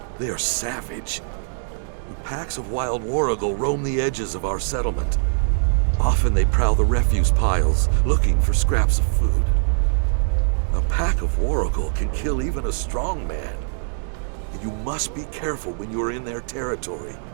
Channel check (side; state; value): left; silent; digital silence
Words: they are savage. Packs of wild warrigal roam the edges of our settlement. Often they prowl the refuse piles, looking for scraps of food. A pack of warrigal can kill even a strong man. And you must be careful when you are in their territory.